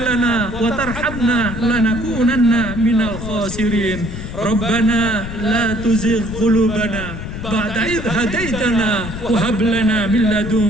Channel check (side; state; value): left; noise; rumble, 8 dB below the sound